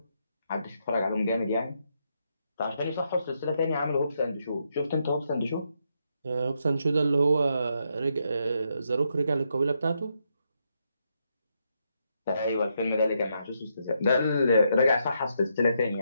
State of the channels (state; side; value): inverted; both; correlation -0.79